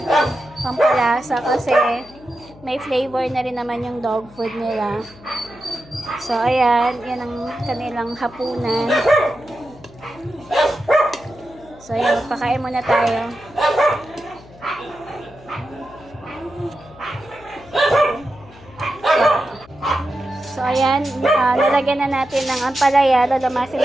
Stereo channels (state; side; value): noise; left; hum, 23 dB below the sound